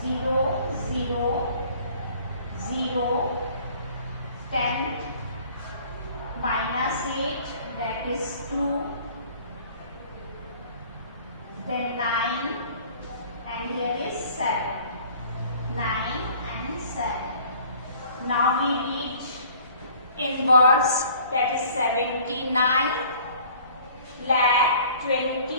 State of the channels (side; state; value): both; inverted; correlation -0.52